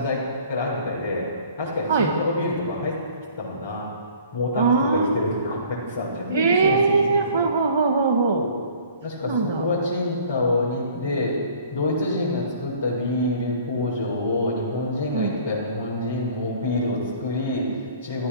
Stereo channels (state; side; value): inverted; both; correlation -0.51